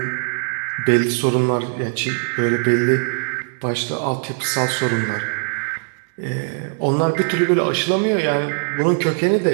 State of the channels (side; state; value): left; silent; digital silence